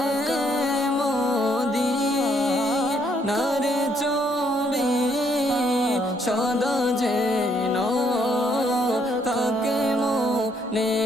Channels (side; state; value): both; normal; correlation 0.70